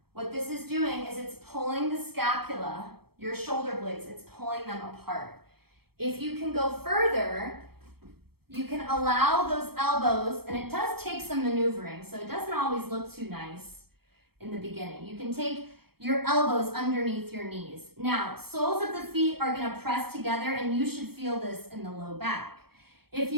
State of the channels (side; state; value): left; late; 0.96 ms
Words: What this is doing is it's pulling the scapula, your shoulder blades, it's pulling them apart. If you can go further, you can allow those elbows, and it does take some maneuvering, so it doesn't always look too nice in the beginning. You can take your elbows underneath your knees. Now, soles of the feet are gonna press together, and you should feel this in the low back. If